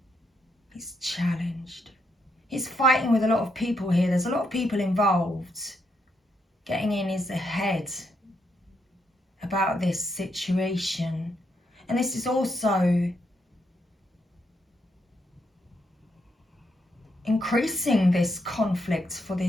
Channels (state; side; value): normal; both; correlation 0.78